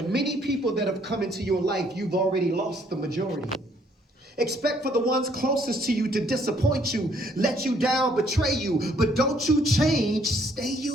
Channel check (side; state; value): both; normal; correlation 0.65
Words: many people that have come into your life, you've already lost the majority. Expect for the ones closest to you to disappoint you, let you down, betray you. But don't you change, stay